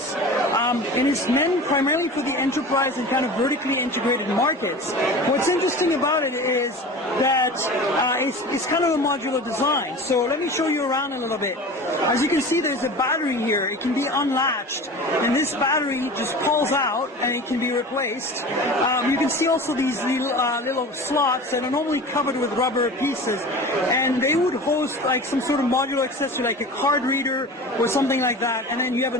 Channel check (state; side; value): normal; both; correlation 0.35